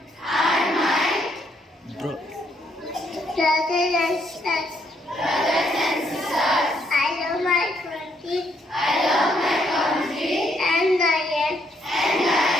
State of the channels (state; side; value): normal; both; correlation 0.72